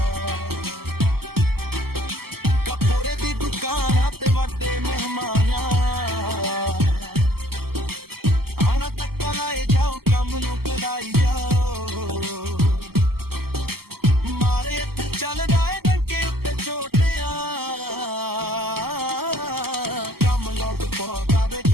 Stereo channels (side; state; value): left; late; 0.95 ms